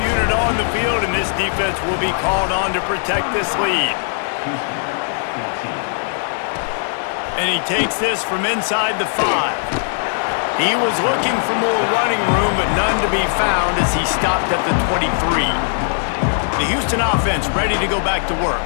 unit on the field, and this defense will be called on to protect this lead. And he takes this from inside the 5. He was looking for more running room, but none to be found as he stopped at the 23. The Houston offense ready to go back to work.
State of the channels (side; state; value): right; silent; digital silence